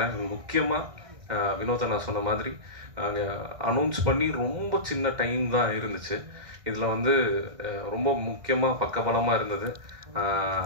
முக்கியமாக வினோத நான் சொன்ன மாதிரி அனௌன்ஸ் பண்ணி ரொம்ப சின்ன டைம் தான் இருந்துச்சு. இதில் வந்து ரொம்ப முக்கியமாக பக்கபலமாக இருந்தது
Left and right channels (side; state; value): left; late; 1.6 ms